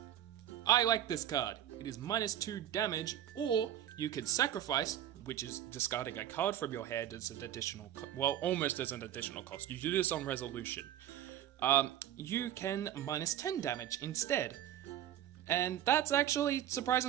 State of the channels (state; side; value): quieter; left; 11.2 dB